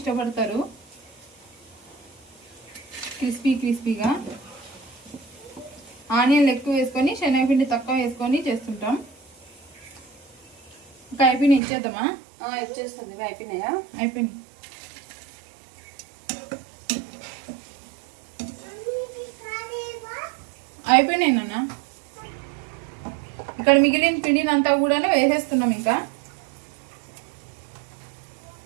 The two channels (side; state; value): left; drops out; at 11.6 s